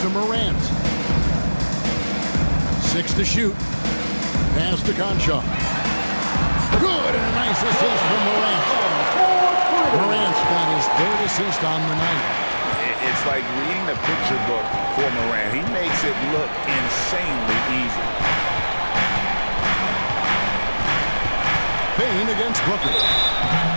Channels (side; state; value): both; inverted; correlation -1.00